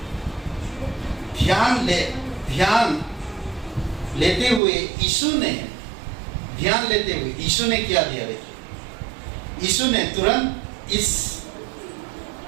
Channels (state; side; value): drops out; left; at 4.6 s